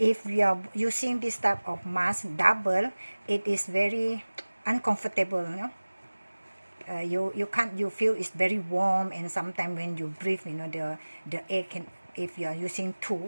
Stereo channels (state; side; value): inverted; both; correlation -1.00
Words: we are using this type of mask double, it is very uncomfortable, you know. You feel it's very warm, and sometimes when you breathe, you know, the air can, if you are using